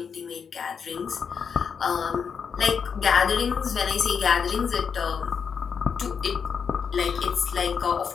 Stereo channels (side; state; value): right; quieter; 6.5 dB